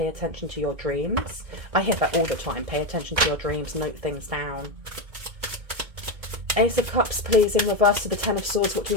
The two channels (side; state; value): left; late; 2.2 ms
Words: attention to your dreams. I hear that all the time. Pay attention to your dreams. Note things down. Ace of Cups, please, in reverse to the Ten of Swords. What do